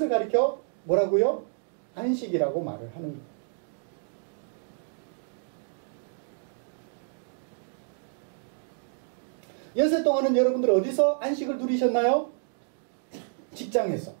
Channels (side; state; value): left; silent; digital silence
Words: 가리켜 뭐라고요? 안식이라고 말을 하는 거예요. 연세 동안은 여러분들 어디서 안식을 누리셨나요? 직장에서.